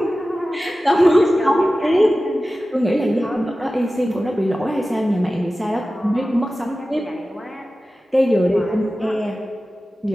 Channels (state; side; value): normal; both; correlation 0.95